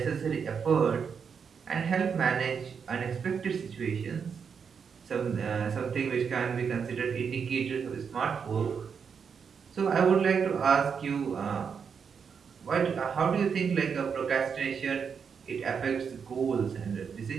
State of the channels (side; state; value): left; quieter; 6.5 dB